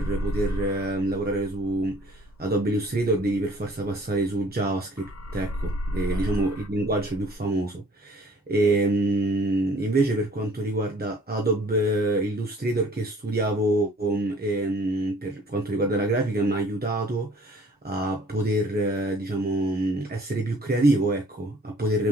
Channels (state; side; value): normal; both; correlation 0.54